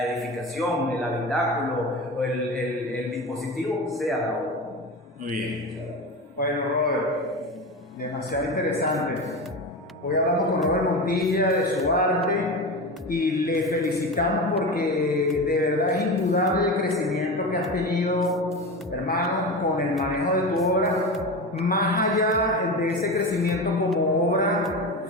edificación, el habitáculo o el dispositivo sea la obra. muy bien. Bueno, Robert, demasiado interesante. Hoy hablamos con Robert Montilla de su arte y le felicitamos porque de verdad es indudable el crecimiento que has tenido, hermano, con el manejo de tu obra. Más allá de ese crecimiento como obra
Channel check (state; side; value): normal; both; correlation 0.24